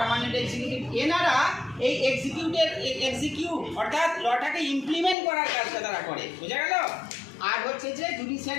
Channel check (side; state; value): right; drops out; at 5.2 s